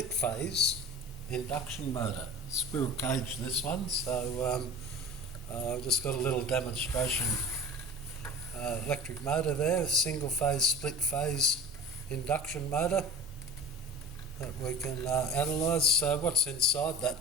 phase induction motor. Squirrel cage this one, so I've just got a little demonstration electric motor there, single phase, split phase induction motor that we can analyse. So what's inside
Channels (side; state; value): both; normal; correlation 0.36